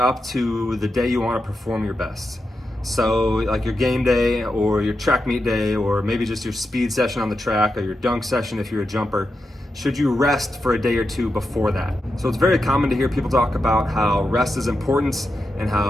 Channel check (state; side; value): normal; both; correlation 0.88